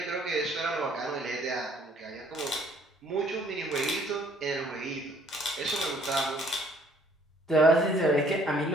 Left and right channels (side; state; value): both; normal; correlation 0.61